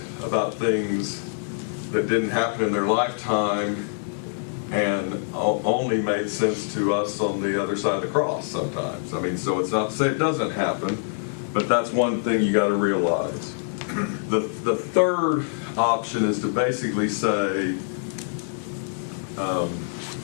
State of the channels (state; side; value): silent; right; digital silence